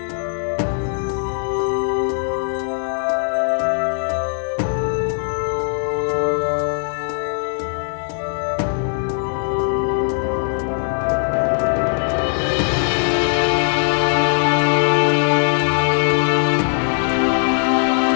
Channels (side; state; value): right; silent; digital silence